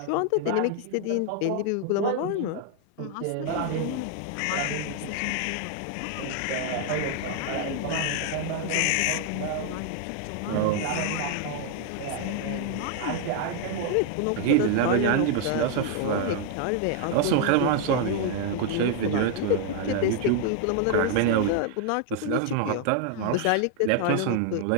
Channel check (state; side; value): different; both; correlation 0.00